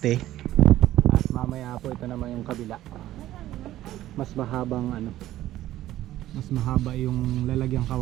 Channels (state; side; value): quieter; left; 14.1 dB